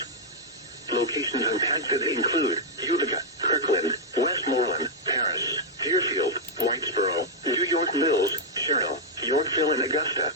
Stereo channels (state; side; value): normal; both; correlation -0.04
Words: Locations impacted include Utica, Kirkland, Westmoreland, Paris, Deerfield, Whitesboro, New York Mills, Sherrill, Yorkville, and Augusta.